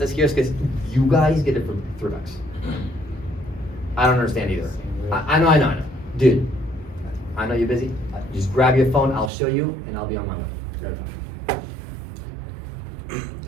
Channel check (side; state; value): left; drops out; at 9.3 s